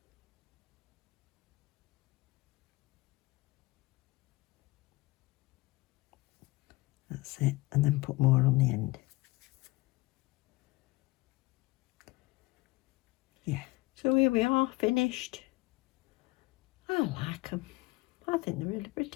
That's it, and then put more on the end. Yeah, so here we are, finished. I like them. I think they're really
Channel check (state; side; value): quieter; right; 21.7 dB